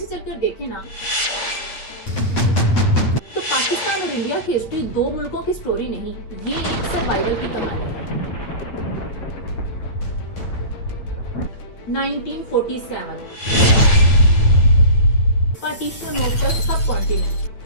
चलकर देखें ना, तो पाकिस्तान और इंडिया की हिस्ट्री दो मुल्कों की स्टोरी नहीं, ये एक सर्वाइवल की कहानी है। 1947 partition of the sub continent,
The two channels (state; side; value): late; right; 9.0 ms